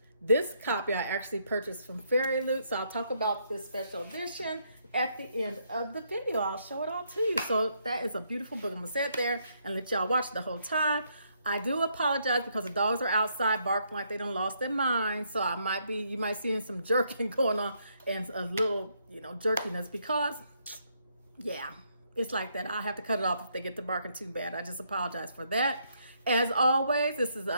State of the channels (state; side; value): inverted; both; correlation -0.74